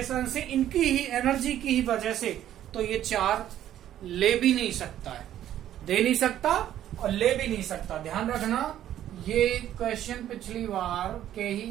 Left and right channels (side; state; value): left; quieter; 11.8 dB